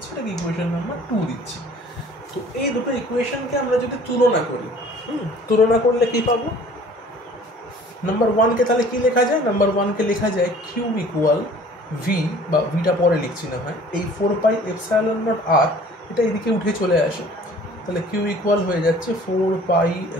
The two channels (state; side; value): normal; both; correlation 0.50